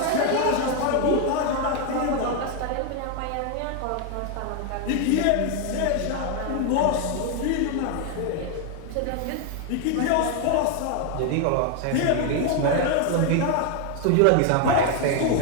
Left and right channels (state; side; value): different; both; correlation 0.01